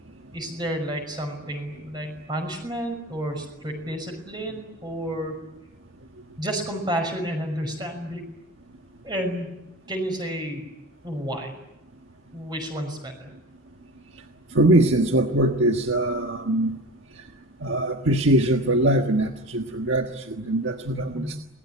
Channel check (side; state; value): both; normal; correlation 0.33